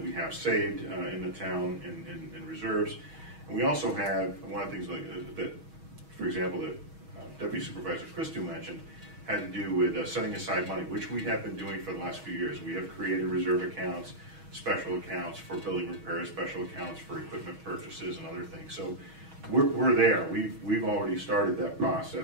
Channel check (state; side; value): late; left; 6.3 ms